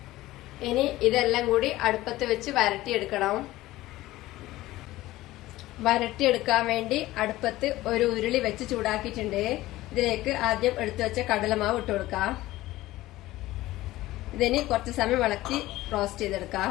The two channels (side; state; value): right; quieter; 16.9 dB